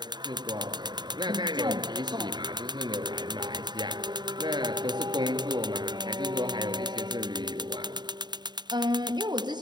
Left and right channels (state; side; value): late; left; 0.21 ms